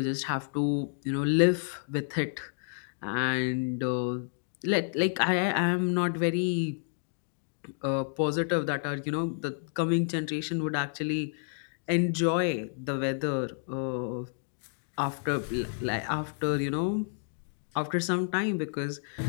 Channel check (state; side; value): silent; right; digital silence